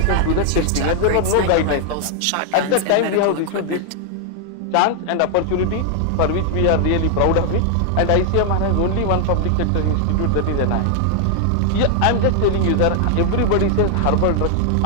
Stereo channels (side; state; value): both; different; correlation 0.00